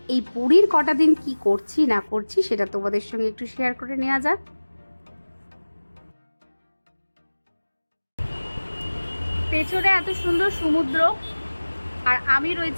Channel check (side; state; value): both; inverted; correlation -1.00